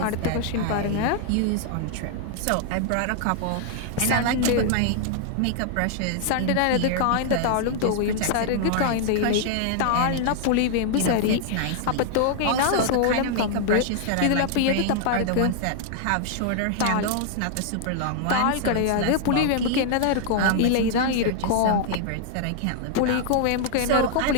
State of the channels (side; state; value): both; different; correlation -0.01